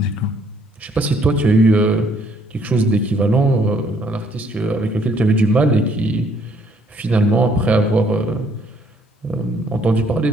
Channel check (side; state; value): both; normal; correlation 0.65